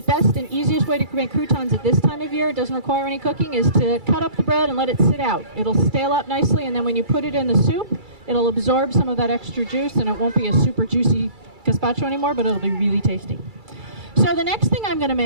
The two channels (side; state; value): left; late; 2.3 ms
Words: best and easiest way to make croutons at this time of year, it doesn't require any cooking, is to cut up the bread and let it sit out. It'll stale out nicely, and then when you put it in the soup, it'll absorb some of that extra juice, and it won't be a super juicy gazpacho anymore, but it'll be really tasty. So the next thing I'm going to